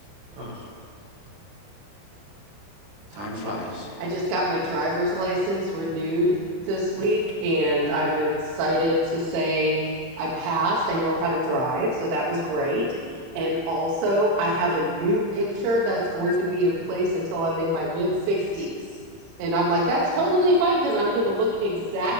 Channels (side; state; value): left; late; 30 ms